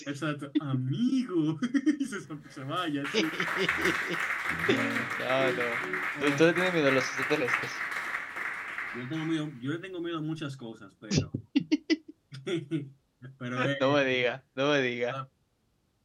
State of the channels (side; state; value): both; identical; correlation 1.00